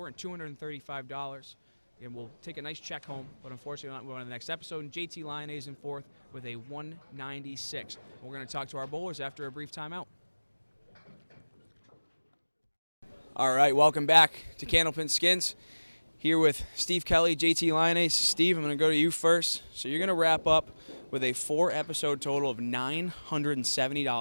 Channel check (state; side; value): inverted; both; correlation -1.00